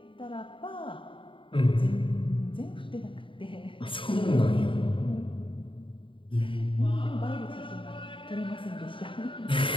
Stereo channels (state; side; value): late; right; 0.25 ms